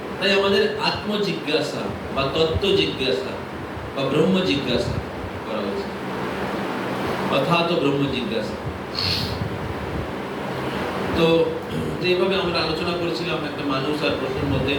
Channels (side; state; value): both; identical; correlation 1.00